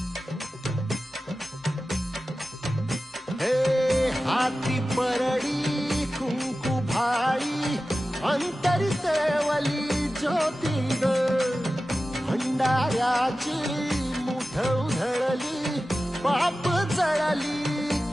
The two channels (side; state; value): both; normal; correlation 0.95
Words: हे हाती परडी कुंकू भाई अंतरी तेवली ज्योती ग भंडाऱ्याची मुठ उधळली पाप जळली